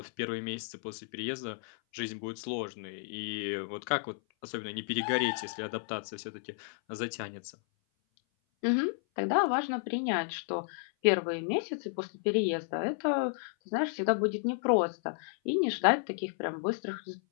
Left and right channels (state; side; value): silent; right; 56 dB below the other